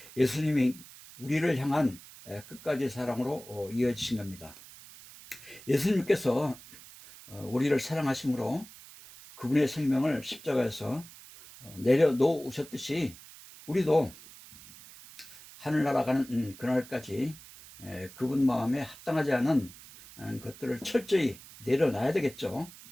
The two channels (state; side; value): noise; right; hiss, 19 dB below the sound